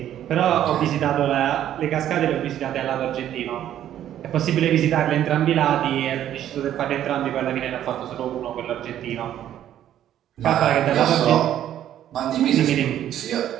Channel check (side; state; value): left; quieter; 11.3 dB